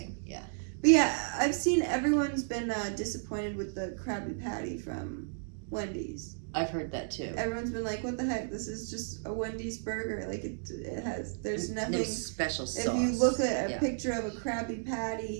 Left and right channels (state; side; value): silent; left; digital silence